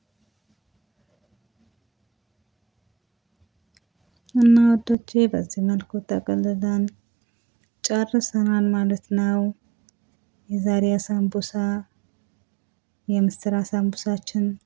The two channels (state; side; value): drops out; left; at 5.0 s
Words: እና ወዶቼ በዚህ መልኩ ጠቅልለን ጨርሰናል ማለት ነው። የዛሬ ሳምቡሳ የምስር ሳምቡሳችን